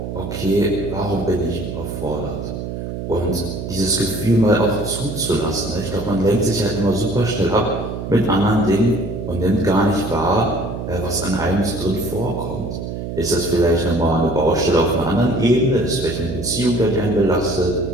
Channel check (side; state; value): right; noise; hum, 6 dB below the sound